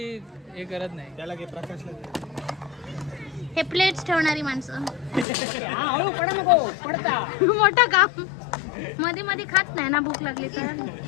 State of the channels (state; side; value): drops out; right; at 5.2 s